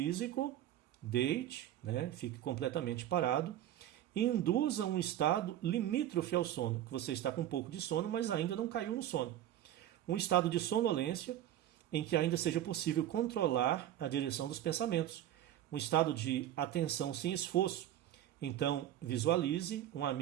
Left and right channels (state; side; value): quieter; left; 12.2 dB